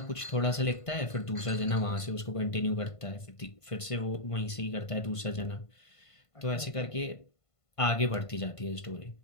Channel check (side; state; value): right; late; 1.5 ms